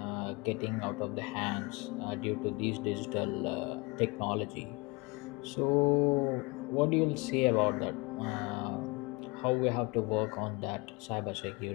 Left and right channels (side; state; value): right; quieter; 27.4 dB